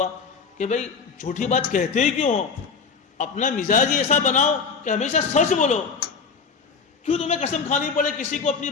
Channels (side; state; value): right; quieter; 5.4 dB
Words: کہ بھائی جھوٹی بات کہتے ہی کیوں ہو؟ اپنا مزاج ہی ایسا بناؤ کہ ہمیشہ سچ بولو۔ کیوں تمہیں قسم کھانی پڑے کسی کو اپنی